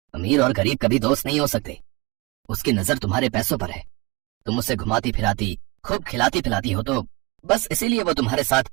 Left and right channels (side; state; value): left; quieter; 25.6 dB